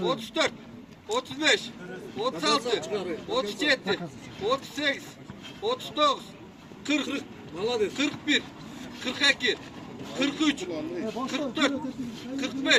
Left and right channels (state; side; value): identical; both; correlation 1.00